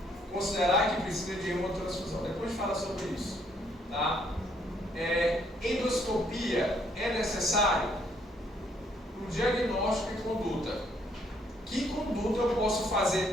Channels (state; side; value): normal; both; correlation 0.68